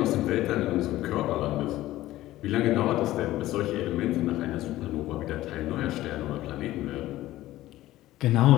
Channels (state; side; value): quieter; right; 15.6 dB